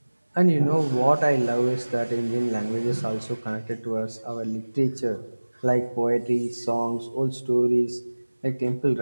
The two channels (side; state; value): both; inverted; correlation -1.00